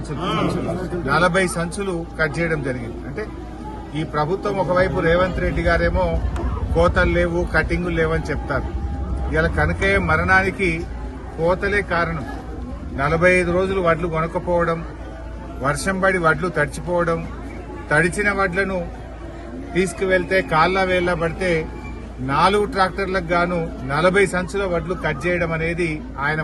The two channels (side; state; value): both; identical; correlation 1.00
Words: 40 సంచులు కట్ చేయడం జరిగింది. అంటే ఈ ప్రభుత్వం ఒకవైపు రేవంత్ రెడ్డి గారేమో కోతలు లేవు, కటింగులు లేవని చెప్తారు. ఇలా కనకయ్య మరణానికి కోతలే కారణం. 45 రోజులు వడ్లు కొనకపోవడం, వర్షం పడి వడ్లు తడిచిపోవడం, తడిచిన వడ్లను తీసుకువెళ్తే కాళ్ళ వేళ్ళ పడితే 4 ట్రాక్టర్లకు గాను 40 సంచుల వడ్లు కట్ చేయడం అనేది ఆయన